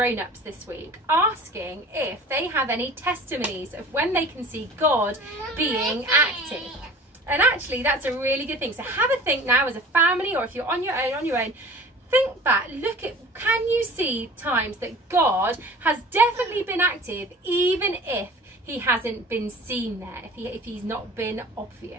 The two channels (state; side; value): normal; both; correlation 0.43